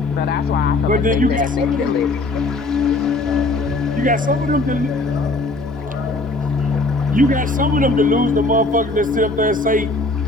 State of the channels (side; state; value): right; quieter; 3.1 dB